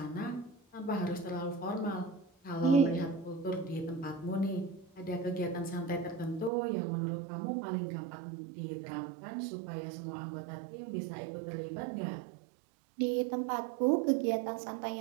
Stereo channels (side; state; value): left; drops out; at 6.5 s